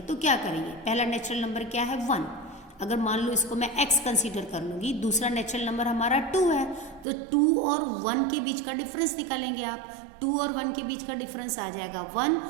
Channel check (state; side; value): drops out; left; at 7.1 s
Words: तो क्या करेंगे? पहला नेचुरल नंबर क्या है? 1। अगर मान लो इसको मैं x कंसीडर कर लूँगी, दूसरा नेचुरल नंबर हमारा 2 है, तो 2 और 1 के बीच का डिफरेंस निकालेंगे आप। 2 और 1 के बीच का डिफरेंस आ जाएगा 1,